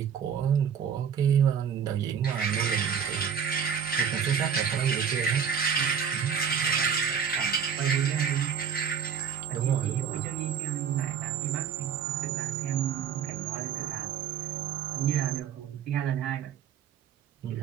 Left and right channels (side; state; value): left; quieter; 7.5 dB